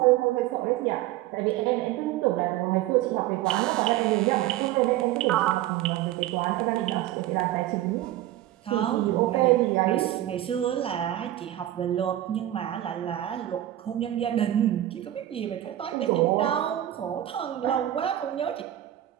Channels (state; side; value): quieter; left; 13.7 dB